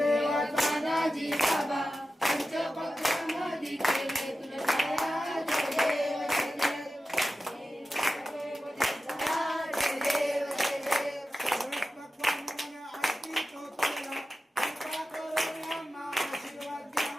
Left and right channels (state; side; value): normal; both; correlation 0.93